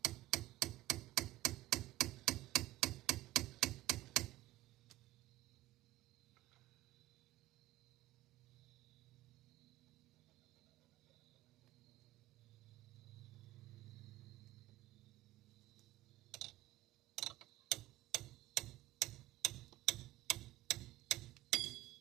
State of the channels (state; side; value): quieter; left; 16.6 dB